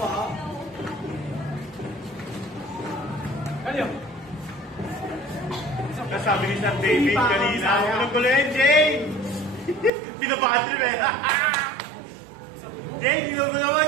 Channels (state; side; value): drops out; left; at 9.9 s